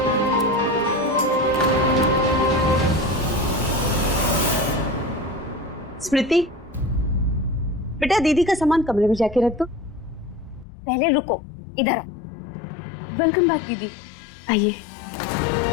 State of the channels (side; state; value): right; drops out; at 10.7 s